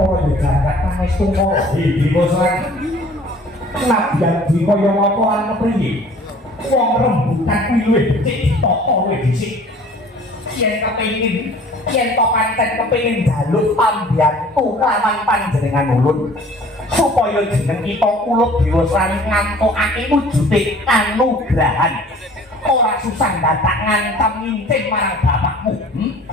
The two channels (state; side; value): normal; both; correlation 0.50